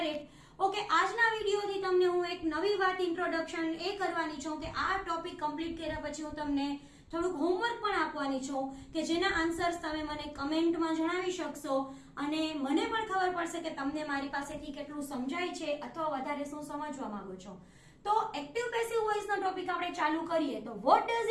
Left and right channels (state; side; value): identical; both; correlation 1.00